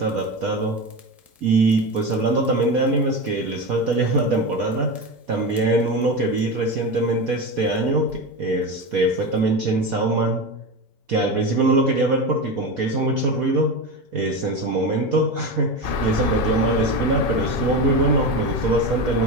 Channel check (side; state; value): both; normal; correlation 0.21